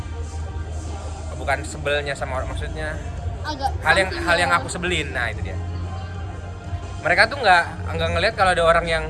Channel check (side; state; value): both; identical; correlation 1.00